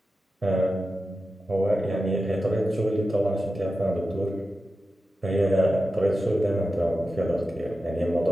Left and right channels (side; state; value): both; normal; correlation 0.92